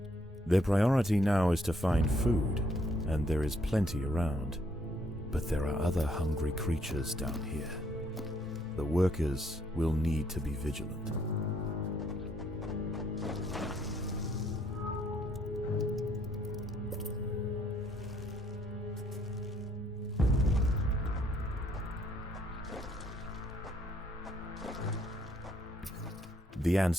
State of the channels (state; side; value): normal; both; correlation 0.69